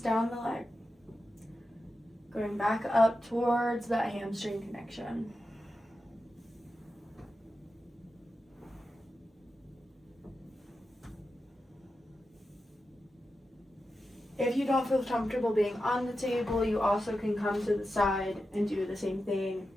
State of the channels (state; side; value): normal; both; correlation 0.90